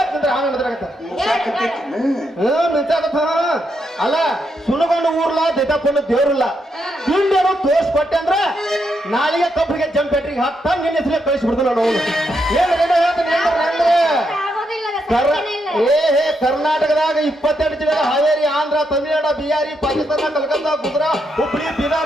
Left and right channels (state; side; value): normal; both; correlation 0.80